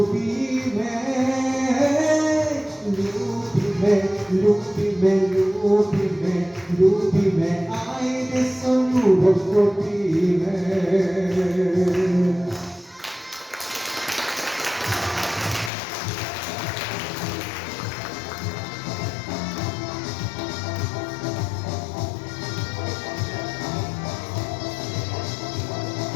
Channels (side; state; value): right; drops out; at 15.7 s